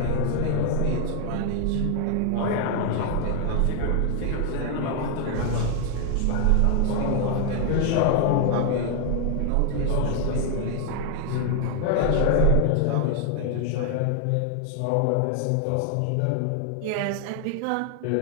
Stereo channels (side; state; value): both; different; correlation 0.00